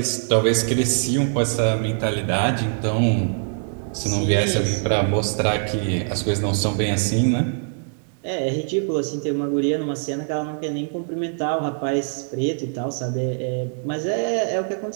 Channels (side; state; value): left; silent; digital silence